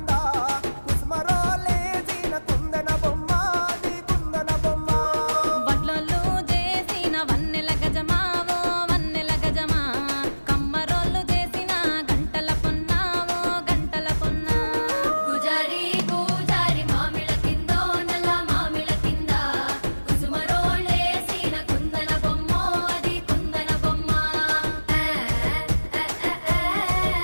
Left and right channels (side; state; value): both; inverted; correlation -1.00